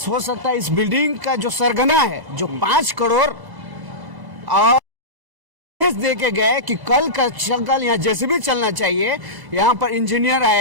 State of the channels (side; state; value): left; late; 1.0 ms